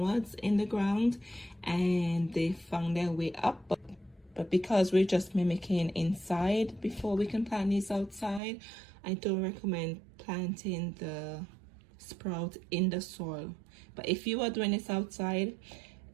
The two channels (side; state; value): left; drops out; at 8.4 s